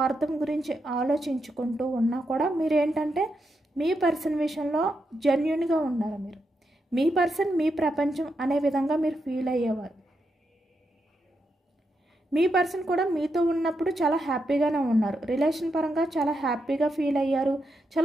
గురించి ఆలోచించుకుంటూ ఉన్నా కూడా మీరు ఏంటంటే మీ పర్సన్ విషయంలో జెన్యూన్గా ఉన్నారు. మీరు మీ పర్సన్ మీ ప్రపంచం అనే విధంగా మీరు ఫీల్ అయ్యేవారు. మీ పర్సన్ కూడా మీతో ఉన్నప్పుడు చాలా హ్యాపీగానే ఉన్నారు, రిలేషన్ పరంగా చాలా హ్యాపీగా ఫీల్ అయ్యారు,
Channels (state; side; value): normal; both; correlation 0.83